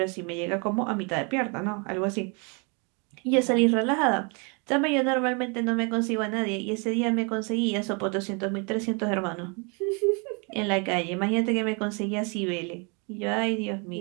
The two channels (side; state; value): left; quieter; 33.6 dB